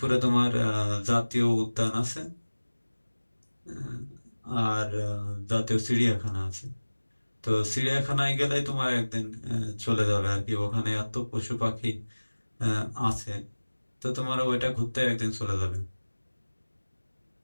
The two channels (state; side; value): inverted; both; correlation -1.00